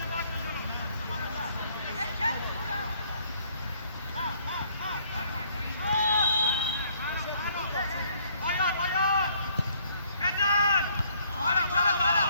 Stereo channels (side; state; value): both; inverted; correlation -0.64